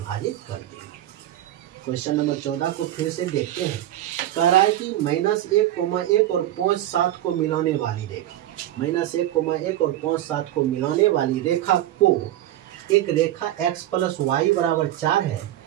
कर देंगे। क्वेश्चन नंबर 14 को फिर से देखते हैं। कह रहा है कि -1,1 और 5,7 को मिलाने वाली रेखा, -1,1 और 5,7 को मिलाने वाली रेखा को, एक रेखा x प्लस वाई बराबर 4 है,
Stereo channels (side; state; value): left; quieter; 13.5 dB